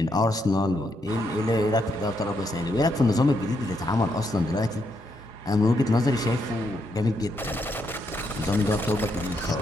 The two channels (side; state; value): both; normal; correlation 0.78